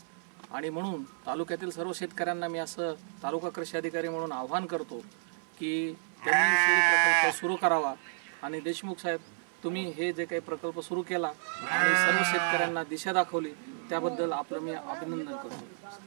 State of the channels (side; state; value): left; silent; 57 dB below the other